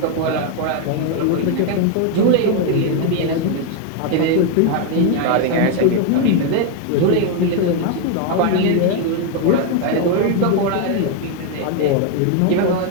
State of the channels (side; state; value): both; different; correlation 0.01